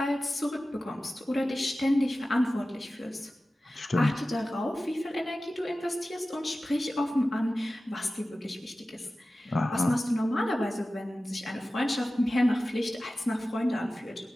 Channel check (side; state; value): both; normal; correlation 0.95